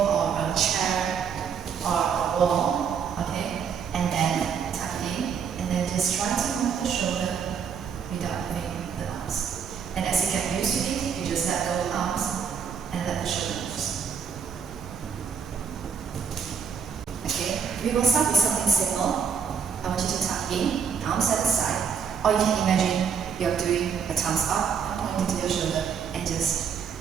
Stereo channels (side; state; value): left; quieter; 6.8 dB